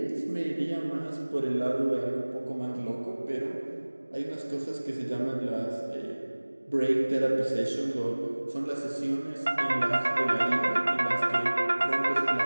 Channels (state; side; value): inverted; both; correlation -1.00